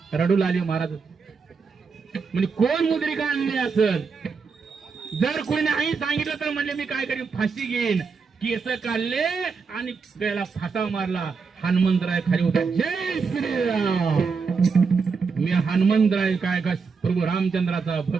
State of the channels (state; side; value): quieter; left; 5.2 dB